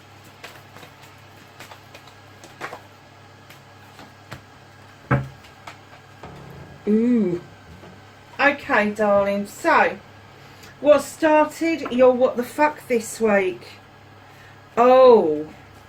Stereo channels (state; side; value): identical; both; correlation 1.00